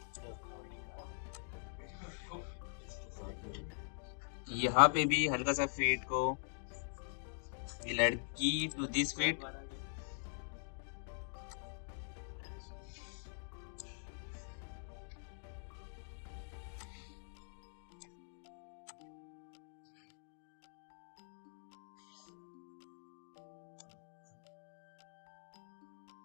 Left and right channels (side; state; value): right; silent; digital silence